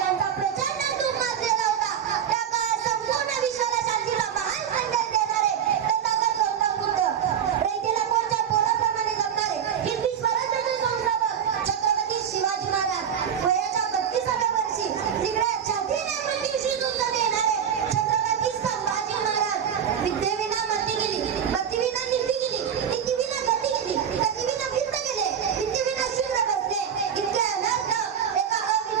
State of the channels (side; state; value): left; quieter; 8.5 dB